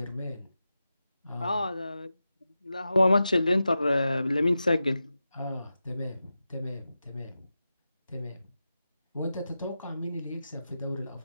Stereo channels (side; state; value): both; inverted; correlation -0.92